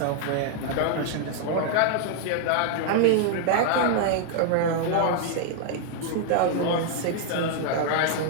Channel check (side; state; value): both; different; correlation 0.00